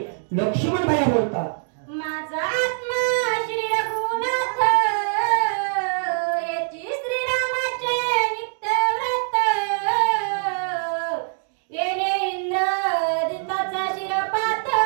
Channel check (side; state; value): left; silent; digital silence